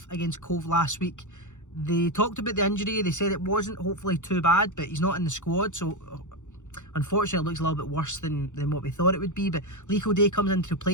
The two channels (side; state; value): right; late; 0.85 ms